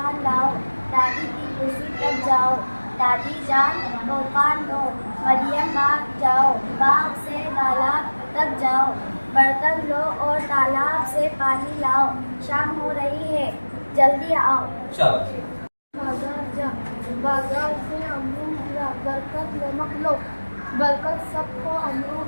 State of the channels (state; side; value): inverted; both; correlation -1.00